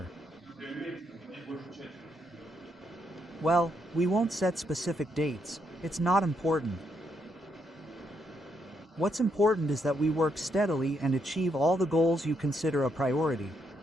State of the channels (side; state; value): both; normal; correlation 0.77